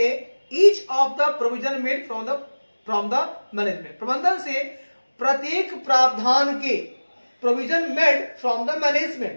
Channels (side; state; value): both; inverted; correlation -1.00